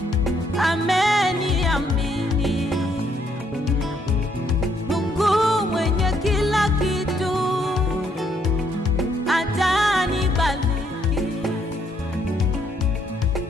ameniamini. Mungu mwenye kila kitu atanibariki.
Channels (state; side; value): normal; both; correlation 0.71